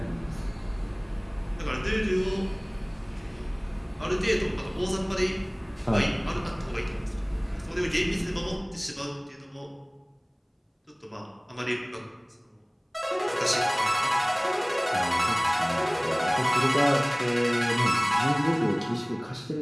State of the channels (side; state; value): both; identical; correlation 1.00